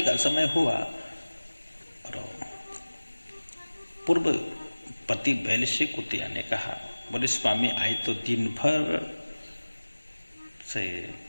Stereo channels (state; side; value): inverted; both; correlation -1.00